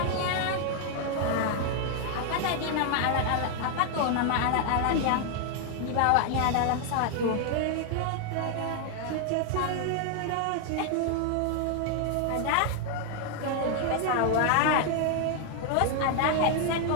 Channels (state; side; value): different; both; correlation 0.00